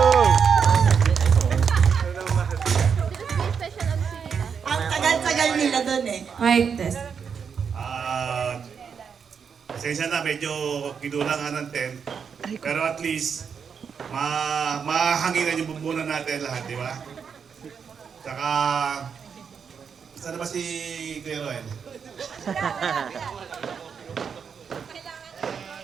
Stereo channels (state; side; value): quieter; left; 6.6 dB